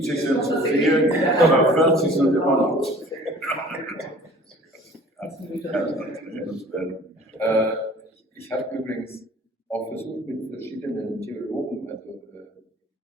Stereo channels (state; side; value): normal; both; correlation 0.49